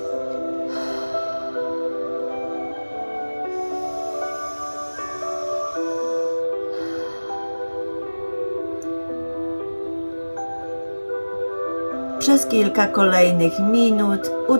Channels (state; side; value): inverted; both; correlation -1.00